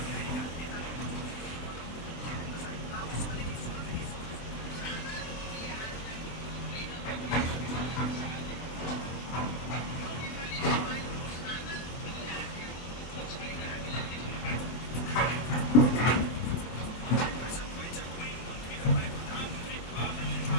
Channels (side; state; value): right; late; 24 ms